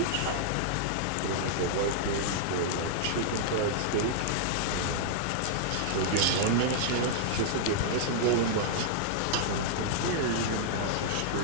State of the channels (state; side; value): different; both; correlation -0.01